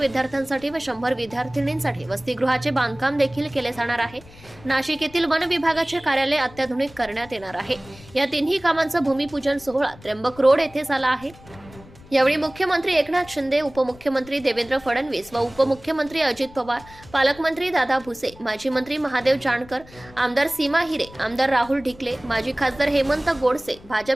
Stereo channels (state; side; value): noise; left; rumble, 22 dB below the sound